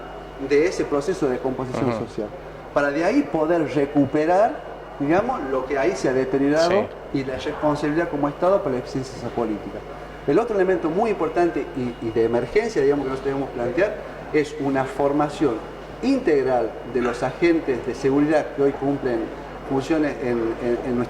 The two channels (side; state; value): both; identical; correlation 1.00